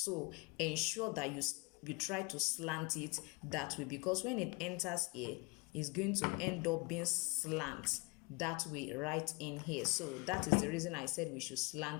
ensure that you try to slant it that way, because when it enters A, it's going to end up being slant that way right in here. So that is the reason I said we should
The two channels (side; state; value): right; quieter; 28.7 dB